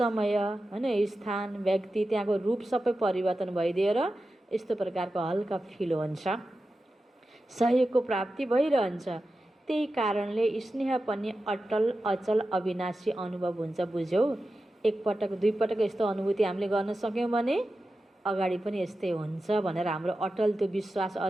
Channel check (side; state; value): both; normal; correlation 0.92